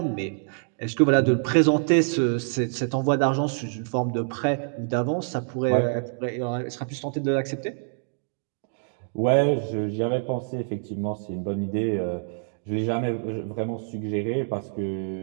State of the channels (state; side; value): silent; left; digital silence